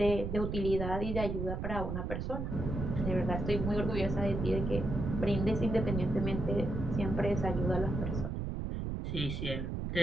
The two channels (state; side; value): noise; right; rumble, 3 dB below the sound